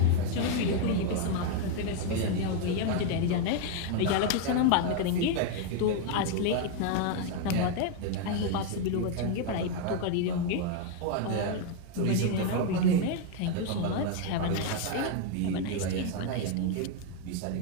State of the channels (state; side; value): different; both; correlation 0.01